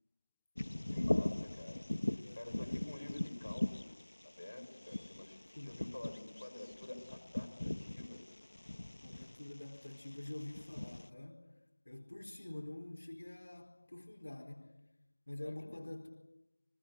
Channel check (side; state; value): both; inverted; correlation -1.00